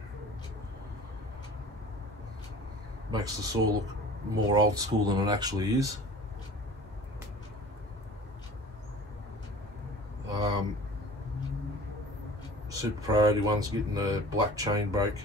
makes the saw look more old school than it actually is. Super priority one's getting a black chain brake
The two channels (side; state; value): both; normal; correlation 0.43